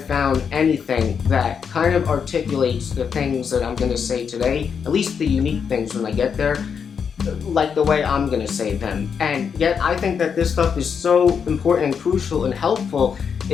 found anything that kind of articulates the things that I'm going to say today, at least the unique things when I get there, like the way I'm going to say them. And yet I think that this stuff is so important and crucial and helpful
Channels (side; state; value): right; quieter; 6.7 dB